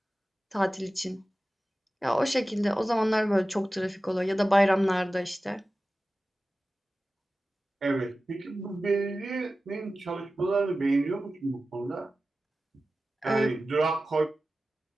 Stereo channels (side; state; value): both; normal; correlation 0.95